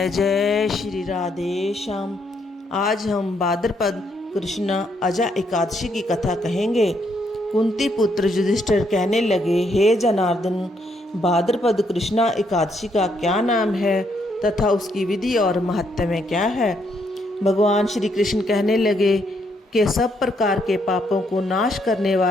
जय श्री राधे श्याम। आज हम भाद्रपद कृष्ण अजा एकादशी की कथा कहेंगे। कुंती पुत्र युधिष्ठिर कहने लगे, हे जनार्दन, भाद्रपद कृष्णा एकादशी का क्या नाम है तथा उसकी विधि और महत्व क्या है। भगवान श्री कृष्ण कहने लगे कि सब प्रकार के पापों को नाश करने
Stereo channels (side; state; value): both; normal; correlation 0.74